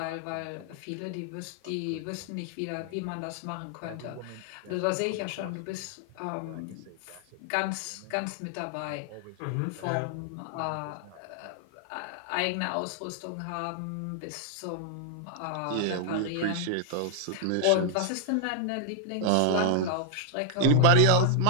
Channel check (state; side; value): different; both; correlation -0.01